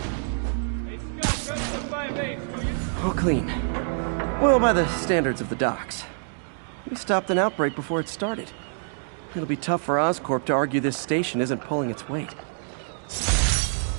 All clean. Well, by the standards of the docks. We stopped an outbreak before it started. It'll be tough for Oscorp to argue this station isn't pulling its weight.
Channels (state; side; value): silent; left; digital silence